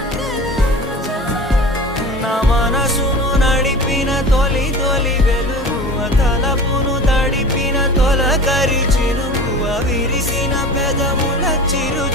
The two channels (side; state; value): both; normal; correlation 0.36